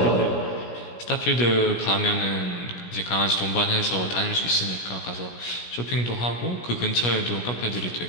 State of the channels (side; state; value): right; late; 17 ms